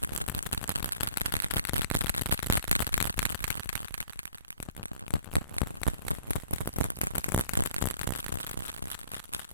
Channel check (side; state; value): both; inverted; correlation -0.50